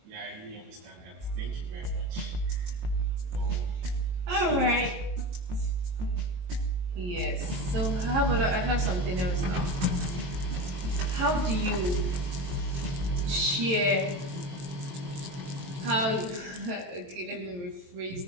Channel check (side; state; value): left; late; 23 ms